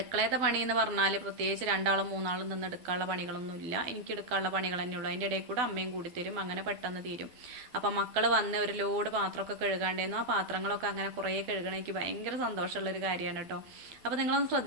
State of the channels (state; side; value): late; left; 12 ms